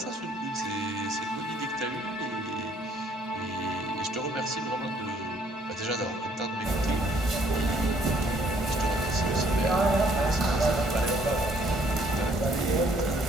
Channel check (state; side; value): normal; both; correlation 0.63